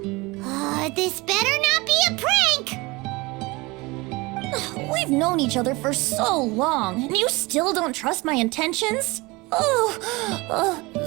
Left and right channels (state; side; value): quieter; left; 23.5 dB